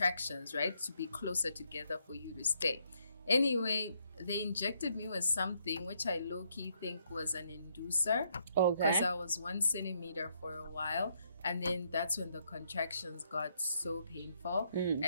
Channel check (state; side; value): inverted; both; correlation -0.74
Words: right, to be closer together for you to stay. Anyway, they injected me with something which I low-key think was an inducer, because I was 1 centimeter for a while, and then that's when the contractions got so painful.